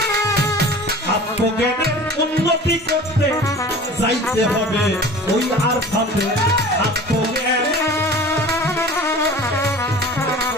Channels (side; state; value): both; normal; correlation 0.41